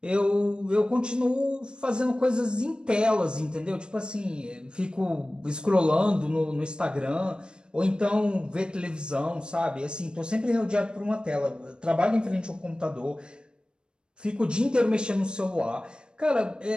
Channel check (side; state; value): left; late; 0.052 ms